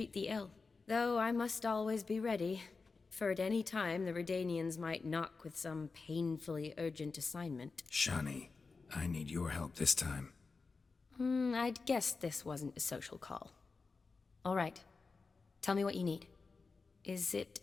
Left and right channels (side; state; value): right; quieter; 4.3 dB